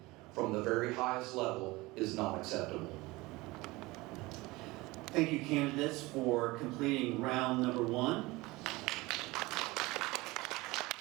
from the very highest level is not acceptable. Thank you, candidates, for completing round number 1.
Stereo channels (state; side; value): quieter; left; 21.6 dB